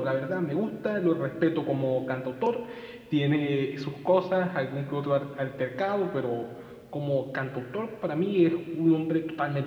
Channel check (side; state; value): both; identical; correlation 1.00